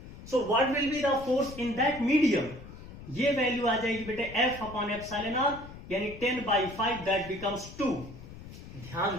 सो what will be the force in that medium, ये वैल्यू आ जाएगी बेटे F अपॉन एप्सिलॉन आर यानी 10/5, दैट बिकम्स 2। ध्यान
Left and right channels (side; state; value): left; noise; rumble, 14 dB below the sound